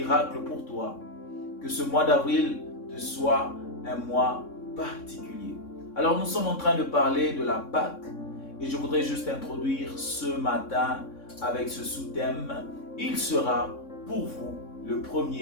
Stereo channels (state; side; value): late; right; 3.6 ms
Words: pour toi. Que ce mois d'avril te soit un mois particulier. Alors nous sommes en train de parler de la Pâque et je voudrais juste introduire ce matin avec ce sous-thème. Il sera pour vous le